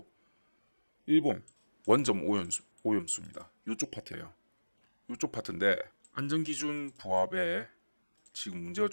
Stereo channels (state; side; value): inverted; both; correlation -1.00